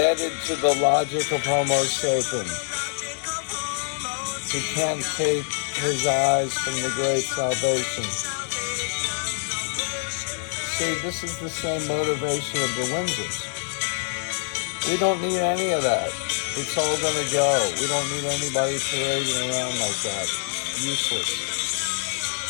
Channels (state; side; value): silent; right; digital silence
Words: to the logic of Homo sapiens. He can't take his eyes from the great salvation. See, this is the same motivation of the Windsors. We don't need any of that. It's all going to go. We don't need anybody parading around like that. Useless.